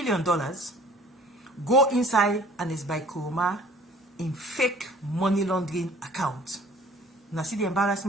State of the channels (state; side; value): normal; both; correlation 0.52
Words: go inside Ernest Bai Koroma in fake money laundering account. Now see the